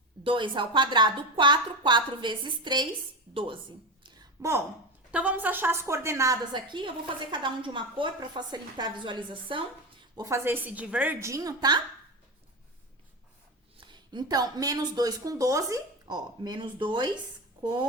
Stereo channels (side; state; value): both; normal; correlation 0.20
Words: 2 ao quadrado, 4. 4 vezes 3, 12. Bom, então vamos achar as coordenadas aqui. Eu vou fazer cada um de uma cor para facilitar a visualização. Vou fazer esse de verdinho, tá? Então, menos 2 com 12. Ó, menos 2